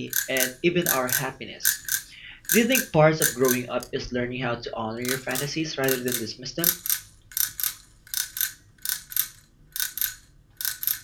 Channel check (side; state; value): both; identical; correlation 1.00